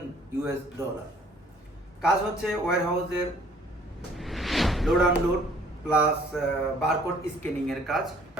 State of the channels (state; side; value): normal; both; correlation 0.58